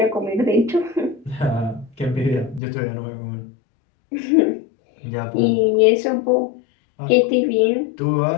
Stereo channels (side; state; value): right; drops out; at 2.6 s